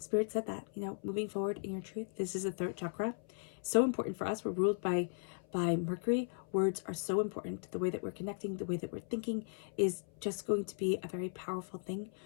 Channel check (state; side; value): silent; right; 53 dB below the other